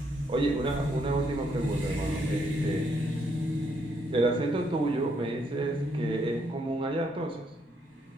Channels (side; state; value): both; normal; correlation 0.73